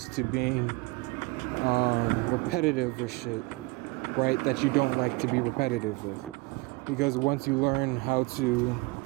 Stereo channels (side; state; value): left; quieter; 24.6 dB